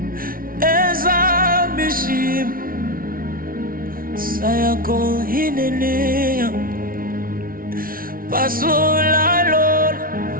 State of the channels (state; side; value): late; left; 0.42 ms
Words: Eza Bishim, sayako hinenea. Pasula Lord,